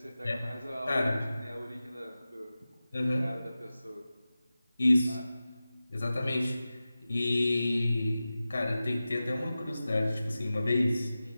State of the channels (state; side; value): inverted; both; correlation -0.95